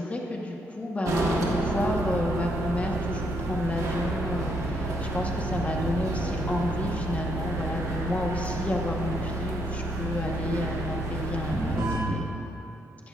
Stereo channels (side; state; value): both; normal; correlation 0.74